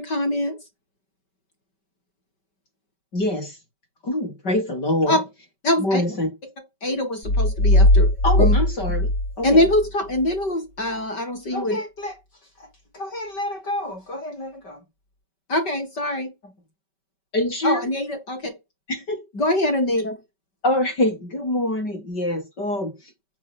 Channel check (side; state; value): right; late; 5.2 ms